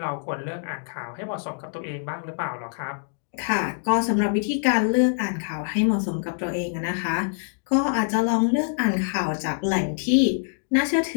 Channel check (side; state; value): right; silent; 61 dB below the other